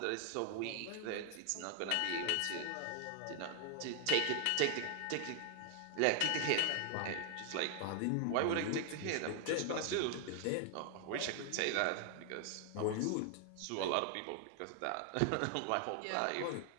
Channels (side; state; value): both; different; correlation 0.00